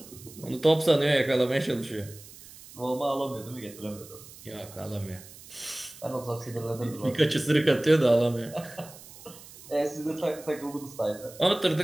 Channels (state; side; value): noise; right; hiss, 19 dB below the sound